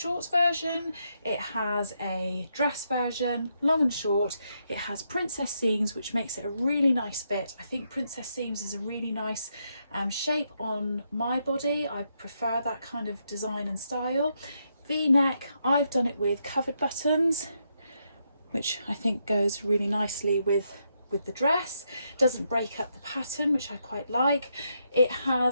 version, it has a dress version, long and short. It has princess seams, which makes it a really nice fit. I think princess seams is a really nice shape on my body. I prefer that kind of design and style. V-neck, I've done it with covered buttons, which I think goes really nicely with the dress. Doesn't break up the pattern, which I quite like. It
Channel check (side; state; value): both; inverted; correlation -0.80